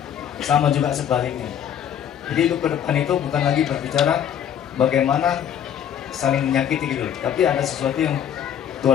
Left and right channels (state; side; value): quieter; right; 9.4 dB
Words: Sama juga sebaliknya. Jadi hidup ke depan itu bukan lagi berbicara bagaimana saling menyakiti gitu, tapi ada sesuatu yang